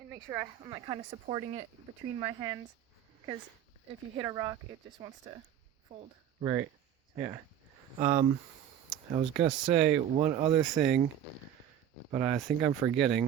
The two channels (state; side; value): quieter; left; 10.0 dB